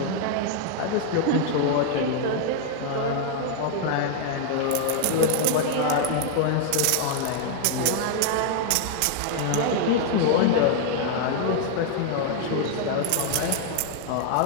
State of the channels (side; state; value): both; different; correlation 0.00